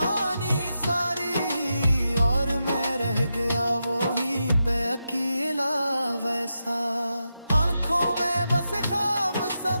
सारी, और मैं रह गया वो ही पे अकेला वैसा। आंखों में बस ख्वाब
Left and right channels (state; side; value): inverted; both; correlation -0.87